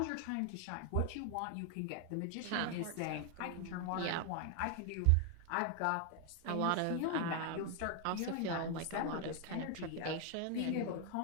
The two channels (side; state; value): both; different; correlation 0.00